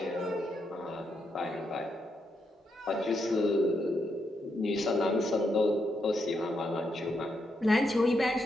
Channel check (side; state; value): both; normal; correlation 0.81